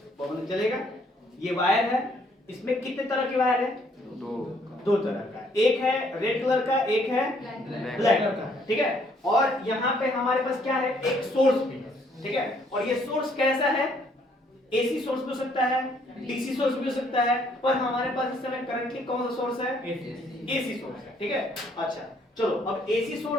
बल्ब जलेगा। ये वायर है, इसमें कितने तरह के वायर है, दो तरह का, एक है रेड कलर का, एक है ब्लैक कलर का। ठीक है, और यहाँ पे हमारे पास क्या है, एक सोर्स भी है। ठीक है, और ये सोर्स कैसा है, एसी सोर्स भी हो सकता है, डीसी सोर्स भी हो सकता है, पर हमारे पास इस समय करंटली कौन सा सोर्स है, एसी सोर्स है। ठीक है, अच्छा चलो, अब एसी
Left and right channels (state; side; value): normal; both; correlation 0.66